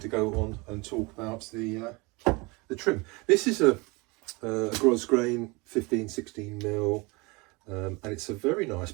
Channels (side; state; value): left; quieter; 26.1 dB